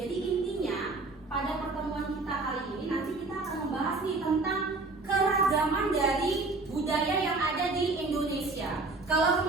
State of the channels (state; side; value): quieter; left; 3.5 dB